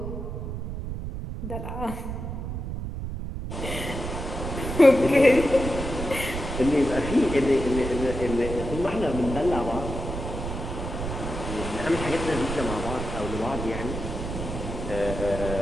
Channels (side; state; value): right; noise; rumble, 5 dB below the sound